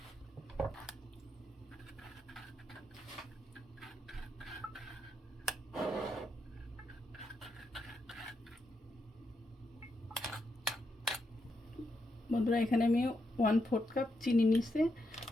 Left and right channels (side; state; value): both; normal; correlation 0.82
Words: বন্ধুরা এখানে আমি 1/4 কাপ চিনি নিচ্ছি,